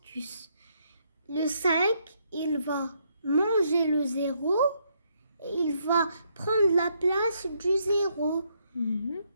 Le 5, il va manger le 0 et il va prendre la place du 0.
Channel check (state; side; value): inverted; both; correlation -0.74